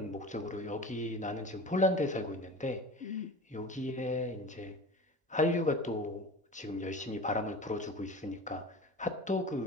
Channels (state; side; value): normal; both; correlation 0.35